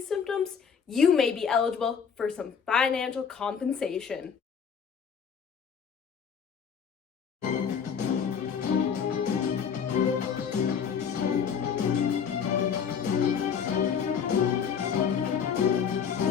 symptoms, you may be eligible for some financial compensation.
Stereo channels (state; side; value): quieter; right; 7.0 dB